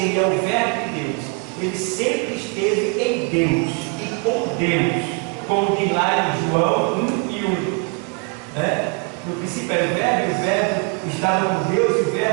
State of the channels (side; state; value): left; quieter; 35.1 dB